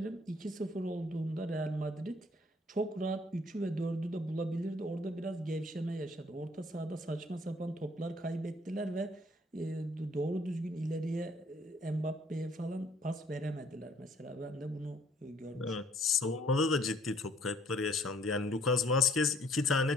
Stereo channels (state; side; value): normal; both; correlation 0.62